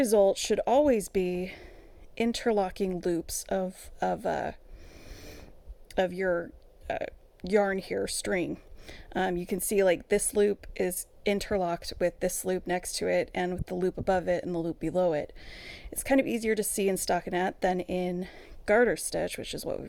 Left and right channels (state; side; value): identical; both; correlation 1.00